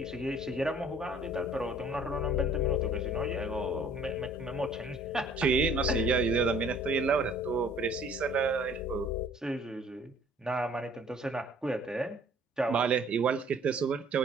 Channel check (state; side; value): normal; both; correlation 0.55